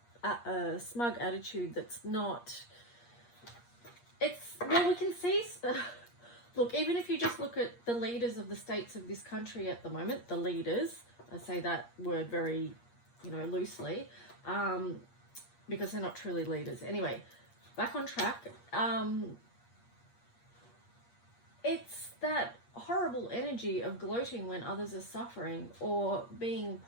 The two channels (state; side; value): late; right; 8.5 ms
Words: smug attitude that's not, well, we can see look, even if you just look at the leaders of the states of this country at the moment, the leaders, I say that word very, you know, loosely, because they're not truly leaders. Anyway, back on track. It's that horrible energy of gloating when others are suffering, or being